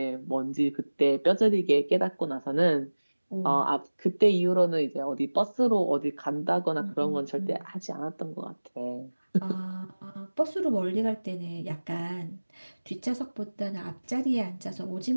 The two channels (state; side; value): inverted; both; correlation -1.00